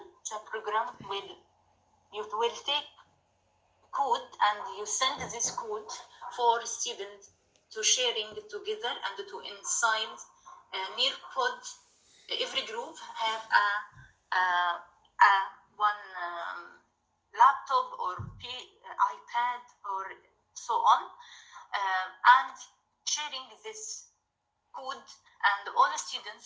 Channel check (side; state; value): both; identical; correlation 1.00